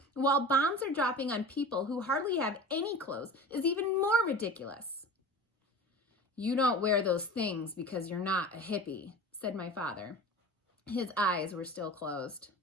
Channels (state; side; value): normal; both; correlation 0.36